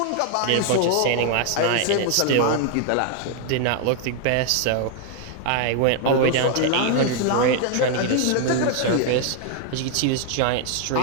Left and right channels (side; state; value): both; different; correlation 0.00